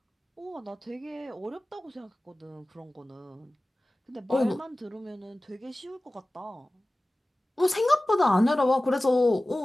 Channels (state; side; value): normal; both; correlation 0.97